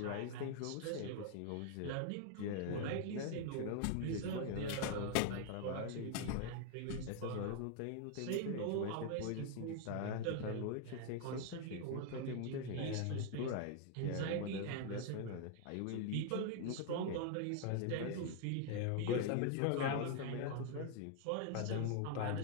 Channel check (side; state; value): both; different; correlation 0.00